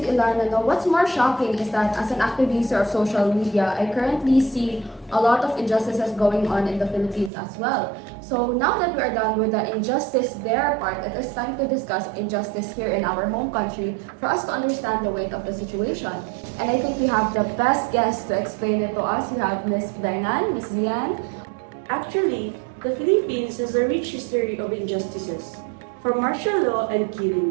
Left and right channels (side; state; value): left; drops out; at 7.3 s